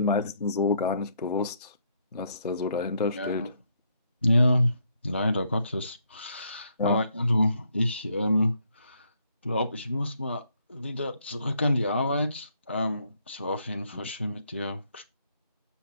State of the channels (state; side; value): inverted; both; correlation -0.71